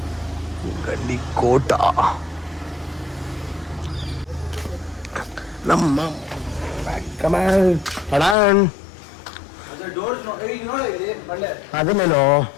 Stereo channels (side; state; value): right; drops out; at 8.3 s